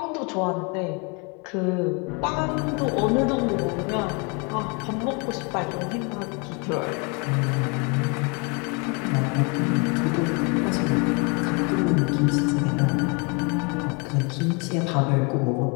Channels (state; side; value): quieter; right; 32.1 dB